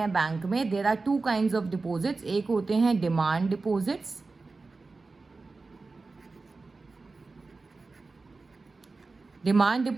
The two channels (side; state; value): left; quieter; 3.8 dB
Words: बैंक में, there are 2 kinds of deposits. एक होते हैं demand deposits, demand